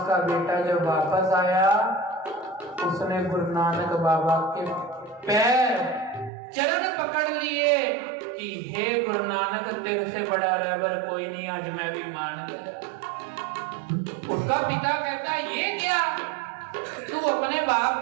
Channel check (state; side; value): drops out; left; at 6.3 s